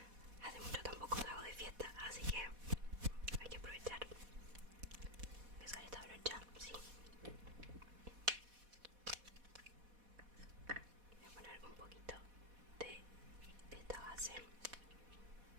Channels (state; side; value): late; left; 4.1 ms